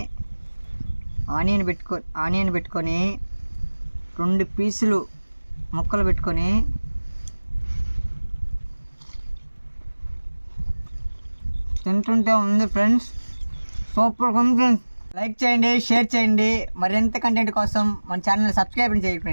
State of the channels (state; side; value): inverted; both; correlation -1.00